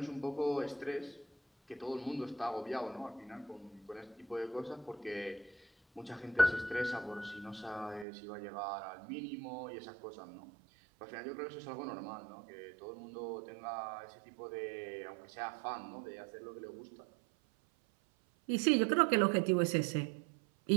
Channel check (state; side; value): drops out; left; at 8.1 s